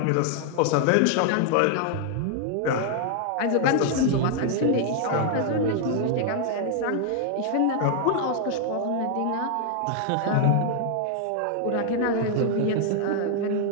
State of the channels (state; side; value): different; both; correlation 0.00